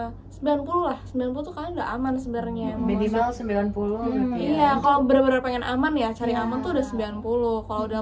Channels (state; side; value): identical; both; correlation 1.00